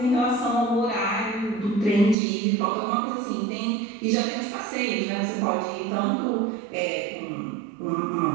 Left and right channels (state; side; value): drops out; left; at 2.1 s